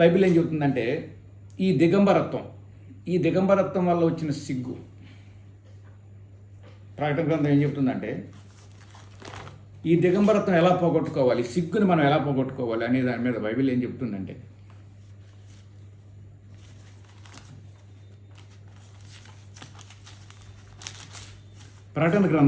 బైబిల్ ఏం చెబుతుందంటే, ఈ దిగంబరత్వం వల్ల వచ్చిన సిగ్గు, ప్రకటన గ్రంథం ఏం చెబుతుందంటే, ఈ దిగంబరత్వం ఎలా పోగొట్టుకోవాలి, సిగ్గుని మనం ఎలా పోగొట్టుకోవాలి అనే దాని మీద బైబిల్ ఏం చెప్తుందంటే, ప్రకటన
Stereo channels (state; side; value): identical; both; correlation 1.00